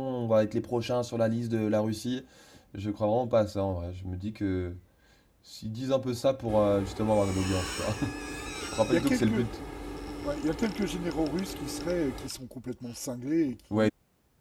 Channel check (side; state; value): both; identical; correlation 1.00